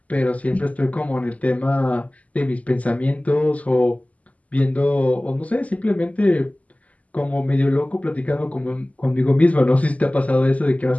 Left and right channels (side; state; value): right; late; 0.071 ms